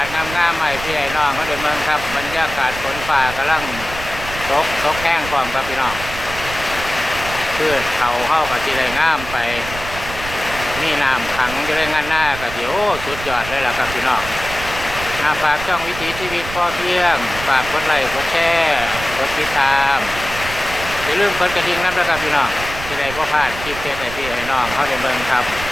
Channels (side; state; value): right; noise; rumble, 10 dB below the sound